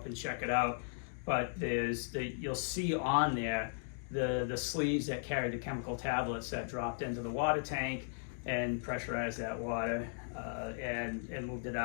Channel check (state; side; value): silent; right; digital silence